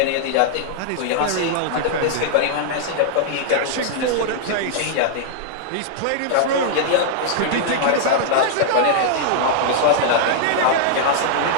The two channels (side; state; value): both; different; correlation -0.01